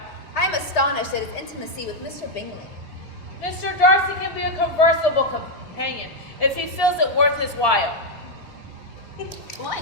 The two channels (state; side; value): normal; both; correlation 0.01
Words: I am astonished at his intimacy with Mr. Bingley. Mr. Darcy can be a conversable companion if he feels it worth his while. What?